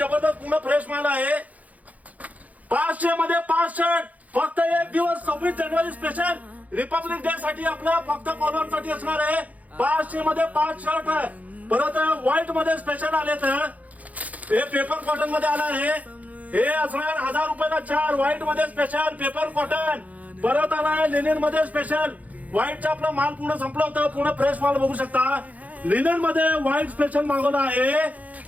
पूर्ण फ्रेश माल आहे. 500 मध्ये 5 शर्ट, फक्त एक दिवस 26 जानेवारी स्पेशल रिपब्लिक डे साठी आपल्या फक्त फॉलोअरसाठी असणार आहे. 500 मध्ये 5 शर्ट आहे. परत व्हाईट मध्ये स्पेशल आले तर हे पेपर कॉटन मध्ये आला आहे. हे असणार 1000 रुपयाला 4. व्हाईट मध्ये स्पेशल पेपर कॉटन. परत आलाय लिनन मध्ये स्पेशल. व्हाईटचा आपला माल पूर्ण संपला होता, पूर्ण फ्रेश माल बघू शकता. लिनन मध्ये व्हाईट स्पेशल मागवला आहे.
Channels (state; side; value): late; left; 0.074 ms